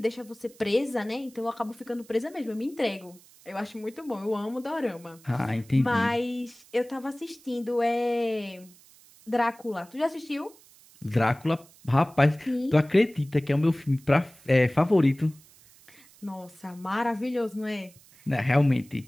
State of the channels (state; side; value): noise; right; hiss, 26 dB below the sound